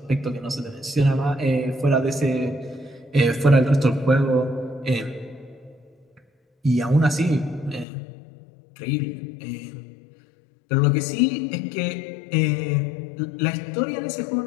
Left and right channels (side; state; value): right; drops out; at 7.9 s